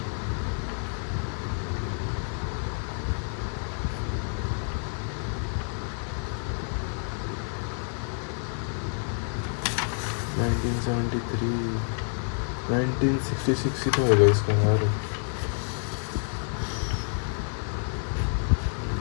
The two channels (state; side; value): silent; right; 56 dB below the other